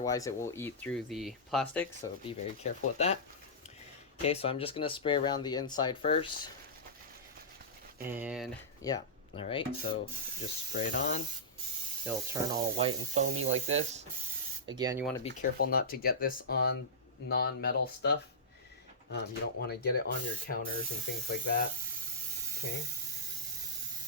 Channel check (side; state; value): both; normal; correlation -0.16